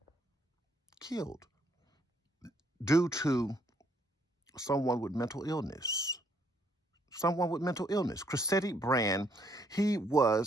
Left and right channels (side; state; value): both; normal; correlation 0.69